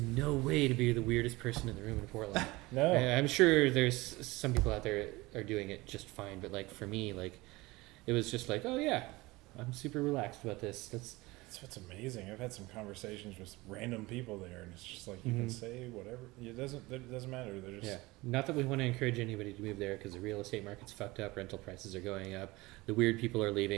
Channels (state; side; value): quieter; left; 21.4 dB